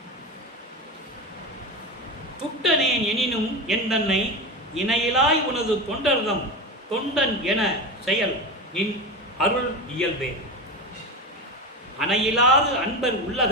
துட்டனேன் எனினும் என் தன்னை இணையிலாய் உனது தொண்டர்தம் தொண்டன் என செயல் நின் அருள் இயல்பே. அணையிலாது அன்பர்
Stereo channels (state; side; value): normal; both; correlation 0.22